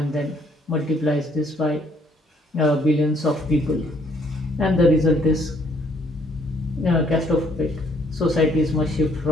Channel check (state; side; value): normal; both; correlation 0.66